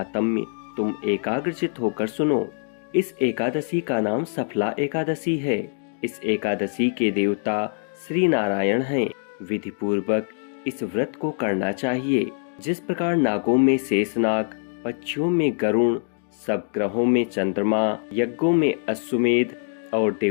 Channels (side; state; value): right; silent; digital silence